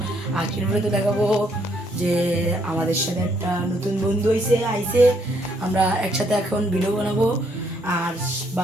আজকের ভিডিওতে দেখাবো যে আমাদের সাথে একটা নতুন বন্ধু আইছে। আমরা একসাথে এখন ভিডিও বানাবো। আর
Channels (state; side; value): normal; both; correlation 0.70